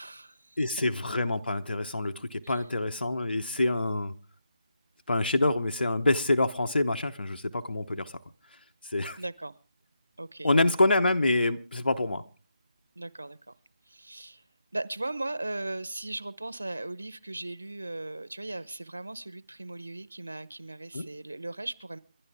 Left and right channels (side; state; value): both; inverted; correlation -0.84